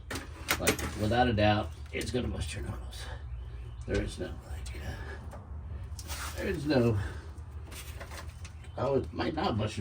Like, without a doubt, it's gonna bust your knuckles. There is no Oh, it might not bust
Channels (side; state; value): both; identical; correlation 1.00